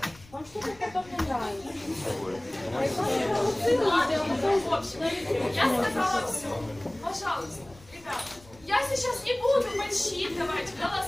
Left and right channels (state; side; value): noise; left; rumble, 24 dB below the sound